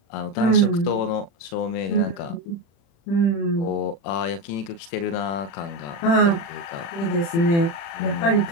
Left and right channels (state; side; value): late; right; 36 ms